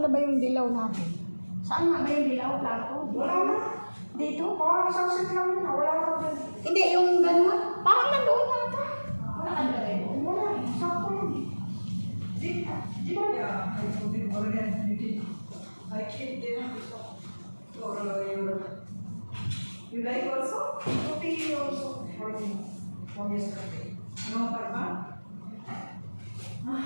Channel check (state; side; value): inverted; both; correlation -1.00